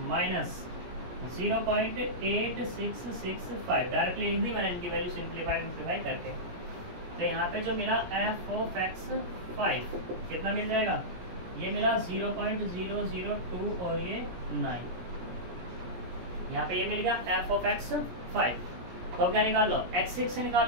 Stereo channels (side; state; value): left; late; 17 ms